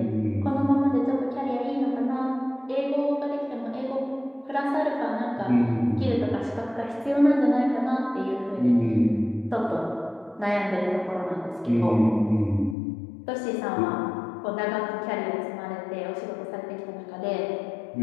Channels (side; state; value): right; drops out; at 12.8 s